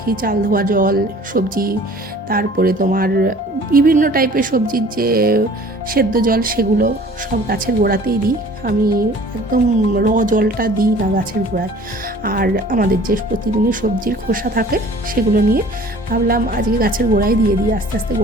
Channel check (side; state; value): both; normal; correlation 0.49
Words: চাল ধোয়া জল, সবজি, তারপরে তোমার বিভিন্ন টাইপের সবজির যে সেদ্ধ জল, সেগুলো সব গাছের গোড়াতেই দিই আমি, একদম জলটা দিই না গাছের গোড়ায়। আর আমাদের যে প্রতিদিনের সবজির খোসা থাকে সেগুলো নিয়ে ভাবলাম আজকে গাছের গোড়ায় দিয়ে দিই, আস্তে আস্তে